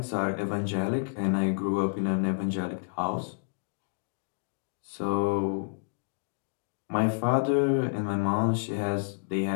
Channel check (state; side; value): silent; right; digital silence